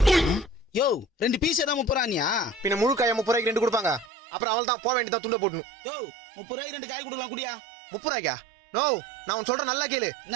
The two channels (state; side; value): drops out; left; at 4.1 s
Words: யோ 2 பீஸ் தான் 30 ரூபாயா? பின்ன முழு காய 30 ரூபாய்க்கு 2 கொடுப்பாங்க. அப்புறம் அவள் தான் போக வேண்டியதா துண்ட போடணும். யோ 30 ரூபாய்க்கு 2 காய் கொடுக்கலாம் குடியா? 30 ரூபாய்க்கா? நோ நான் உன் சொல்ற நல்லா கேளு. என்ன